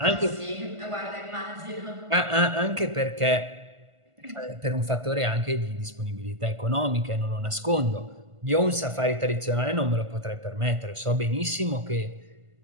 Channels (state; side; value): late; left; 1.5 ms